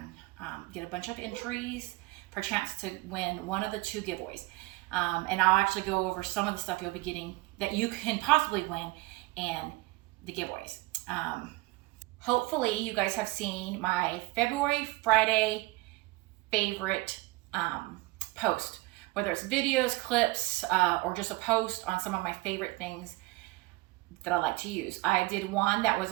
get a bunch of entries for a chance to win one of the 2 giveaways. And I'll actually go over some of the stuff you'll be getting that you can possibly win in the giveaways. Hopefully you guys have seen my February Friday favorite post, whether it's videos, clips, or just a post on some of my favorite things that I like to use. I did one that was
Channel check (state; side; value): quieter; left; 21.7 dB